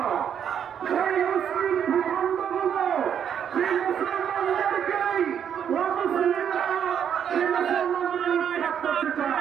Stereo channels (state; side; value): quieter; left; 8.5 dB